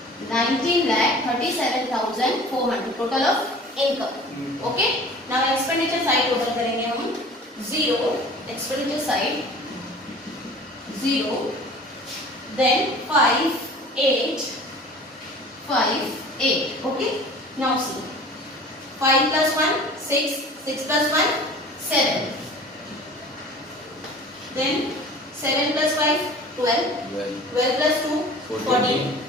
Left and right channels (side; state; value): both; normal; correlation 0.44